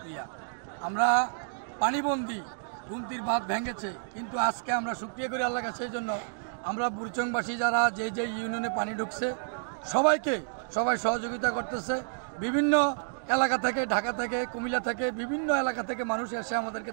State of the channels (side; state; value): left; silent; digital silence